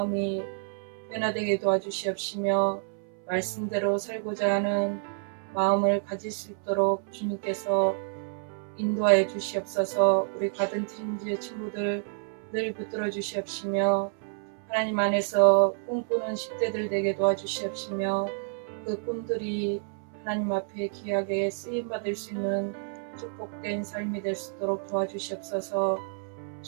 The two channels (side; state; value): left; silent; 59 dB below the other